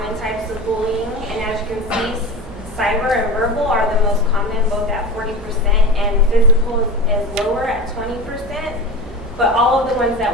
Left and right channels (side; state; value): both; normal; correlation 0.29